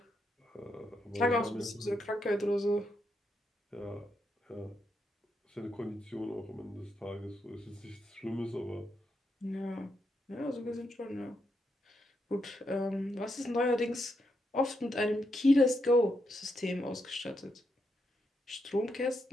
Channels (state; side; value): normal; both; correlation 0.81